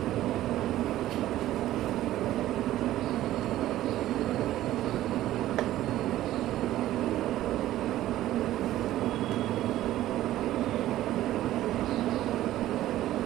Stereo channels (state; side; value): quieter; left; 14.2 dB